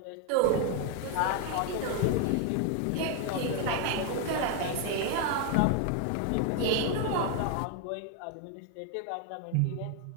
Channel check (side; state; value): both; different; correlation 0.01